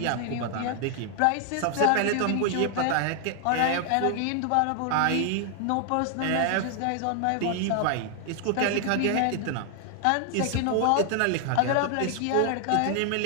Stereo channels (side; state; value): both; different; correlation 0.00